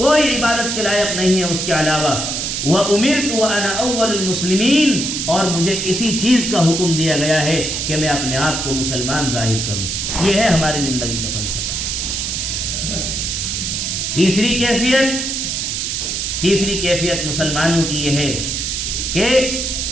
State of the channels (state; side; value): noise; right; hiss, 2 dB below the sound